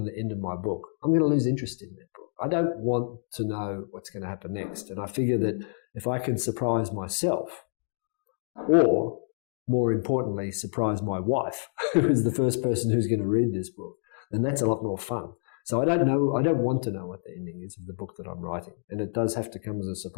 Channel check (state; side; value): silent; right; digital silence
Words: the end of my book, I'm going to lose interest in that book. I don't want to know what's going to happen next. And I figure that if I can surprise myself, or more importantly, surprise my wife, who is the first person who's going to read this book, then that's a lot more fun. So I don't want to know what the ending is of the book that I'm writing. And it does have to come as a